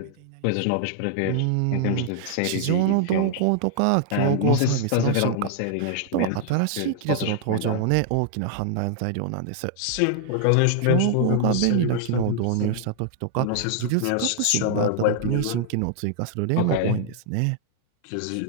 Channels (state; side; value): different; both; correlation -0.01